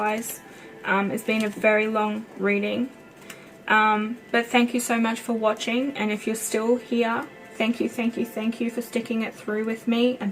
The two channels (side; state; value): both; identical; correlation 1.00